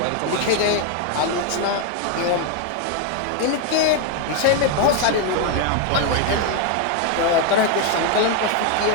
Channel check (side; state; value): both; different; correlation 0.01